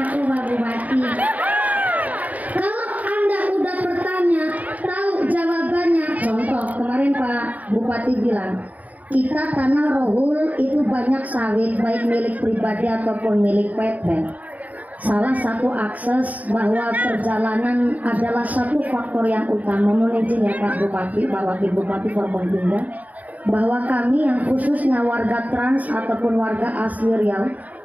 Pak Bupati. Kalau Anda udah bertanya, tahu jawabannya. Contoh, kemarin Pak Bupati bilang, kita tanah Rohul itu banyak sawit, baik milik pribadi ataupun milik PT. Salah satu akses bahwa perjalanan adalah satu faktor yang utama. Mohon izin ya Pak Bupati, Pak Wakil Bupati Forboninda, bahwa kami yang khususnya warga trans ataupun warga asli Riau,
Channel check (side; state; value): left; late; 0.074 ms